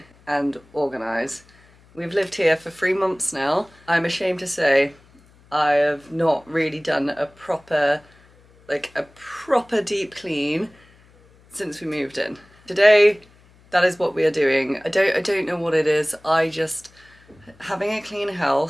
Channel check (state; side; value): noise; left; hum, 29 dB below the sound